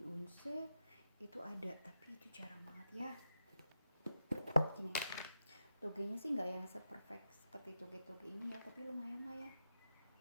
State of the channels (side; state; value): both; inverted; correlation -0.87